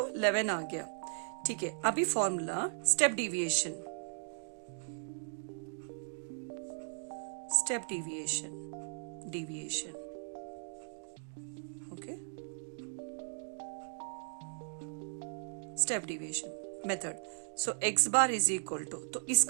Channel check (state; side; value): silent; left; digital silence